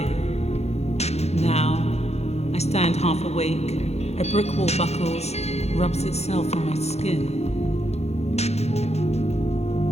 Now, I stand half awake, a brick wall buckles, rubs itself on my skin.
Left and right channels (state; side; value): late; right; 0.31 ms